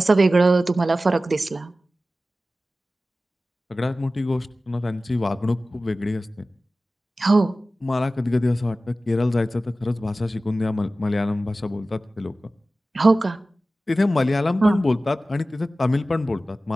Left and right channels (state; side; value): normal; both; correlation 0.95